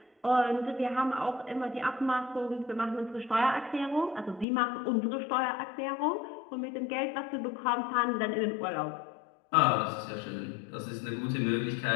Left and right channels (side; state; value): right; drops out; at 4.5 s